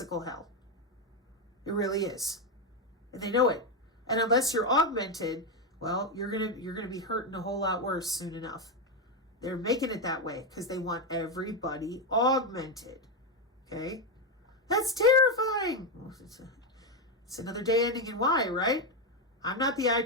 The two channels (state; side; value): normal; both; correlation 0.07